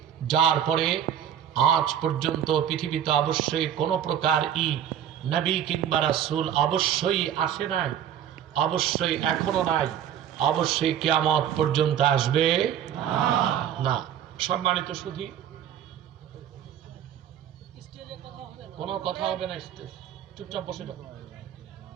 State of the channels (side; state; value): left; quieter; 9.7 dB